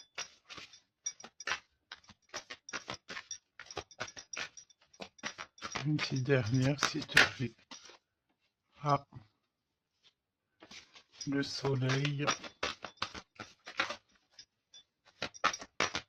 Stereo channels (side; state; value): both; identical; correlation 1.00